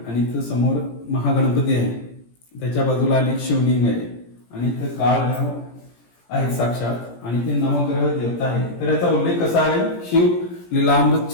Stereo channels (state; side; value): late; right; 17 ms